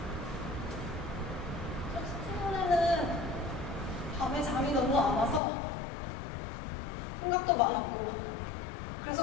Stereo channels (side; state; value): right; drops out; at 5.4 s